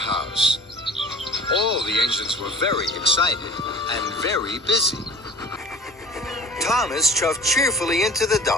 All the engines were very excited and very busy. Thomas chuffed cheerfully into the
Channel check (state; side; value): normal; both; correlation 0.43